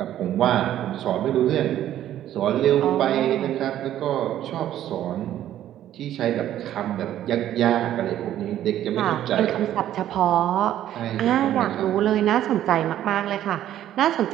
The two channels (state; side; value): quieter; left; 12.0 dB